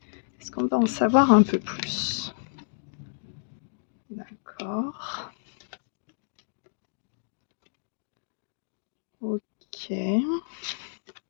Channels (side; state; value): right; silent; digital silence